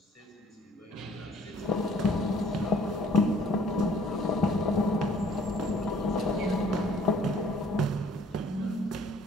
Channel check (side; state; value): both; normal; correlation 0.57